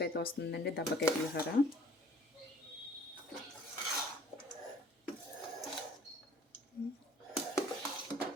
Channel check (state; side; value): normal; both; correlation 0.54